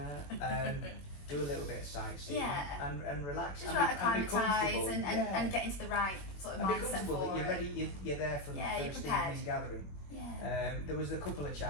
Do a little bit of sightseeing and relax. Just acclimatise and get into the right sort of mindset. Be comfortable that you're ready. You're there from the first evening gathering. Yeah. There was a couple of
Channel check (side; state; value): right; late; 21 ms